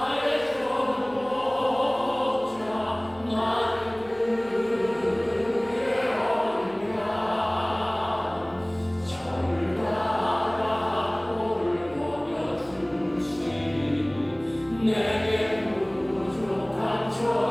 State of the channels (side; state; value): left; noise; hum, 27 dB below the sound